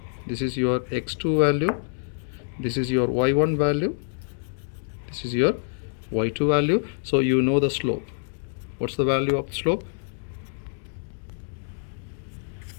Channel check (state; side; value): silent; right; digital silence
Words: this is your x2 value, this is your y1 value, this is your y2 value. So you know the slope. What's the value of the slope?